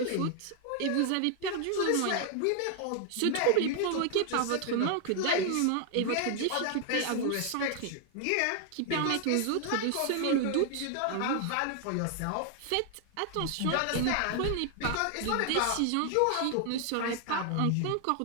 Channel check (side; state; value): both; different; correlation 0.00